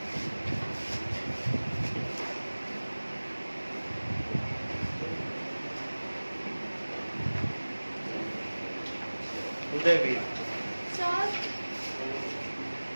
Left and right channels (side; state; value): both; inverted; correlation -1.00